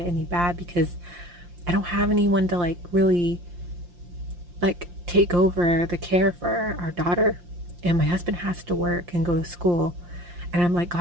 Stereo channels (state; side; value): late; left; 5.7 ms